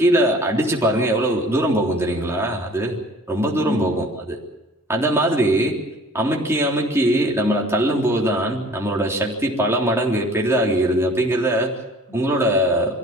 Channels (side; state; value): both; normal; correlation 0.49